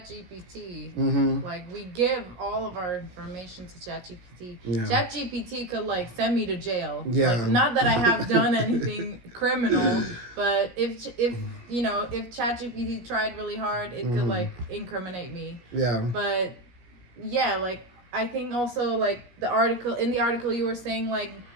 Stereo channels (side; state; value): left; late; 17 ms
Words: Like, we give all of our information to ChatGPT. Yeah. ChatGPT could like send me to jail. Yeah. Like, not that I have done anything criminal, but if you know, if ChatGPT tried really hard, it could like incriminate me. Yeah. But yeah, like, I think also like in the article you were saying like